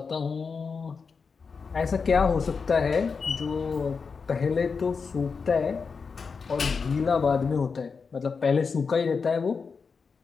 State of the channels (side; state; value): right; quieter; 5.2 dB